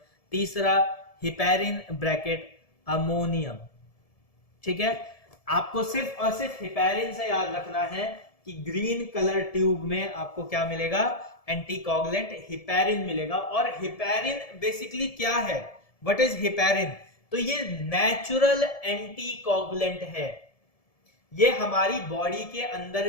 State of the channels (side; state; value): right; late; 1.7 ms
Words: तीसरा हिपेरिन ब्रैकेट अमोनियम, ठीक है। आपको सिर्फ और सिर्फ हिपेरिन से याद रखना है कि ग्रीन कलर ट्यूब में आपको क्या मिलेगा? एंटीकोगुलेंट हिपेरिन मिलेगा। और हिपेरिन बेसिकली क्या है? What is heparin? तो ये नेचुरल एंटीकोगुलेंट है, ये हमारी बॉडी के